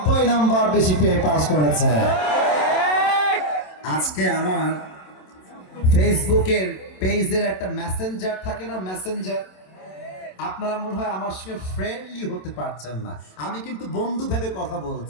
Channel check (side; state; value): right; late; 27 ms